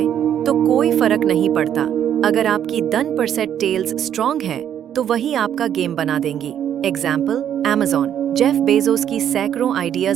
तो कोई फर्क नहीं पड़ता। अगर आपकी 10% टेल्स स्ट्रॉन्ग है तो वही आपका गेम बना देंगी। Example, Amazon। जेफ बेजोस की सैकड़ों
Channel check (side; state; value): left; quieter; 9.8 dB